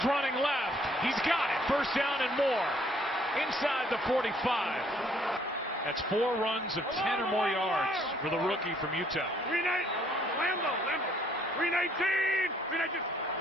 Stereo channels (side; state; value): both; normal; correlation 0.64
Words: running left. He's got it. 1st down and more. Inside the 45. That's 4 runs of 10 or more yards for the rookie from Utah. 319.